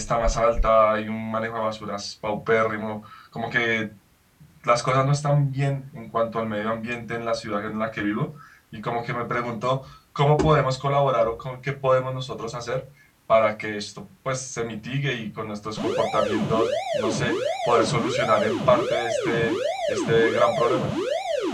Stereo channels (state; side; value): identical; both; correlation 1.00